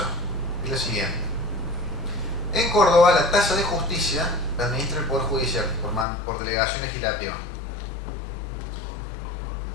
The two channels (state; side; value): drops out; right; at 6.1 s